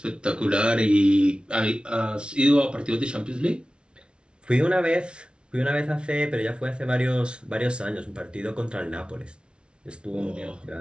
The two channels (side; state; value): left; late; 0.057 ms